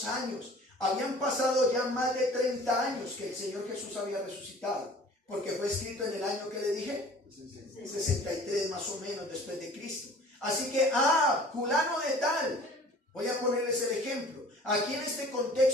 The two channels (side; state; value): both; normal; correlation 0.47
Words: años, habían pasado ya más de 30 años que el Señor Jesús había resucitado, porque fue escrito en el año que le dije, 63 más o menos después de Cristo. Así que, fulano de tal, voy a ponerles el ejemplo. Aquí en este